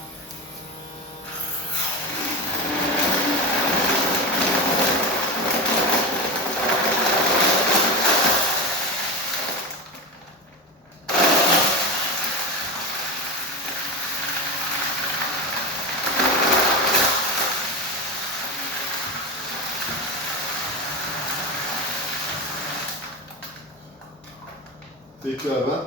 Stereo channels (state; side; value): normal; both; correlation 0.20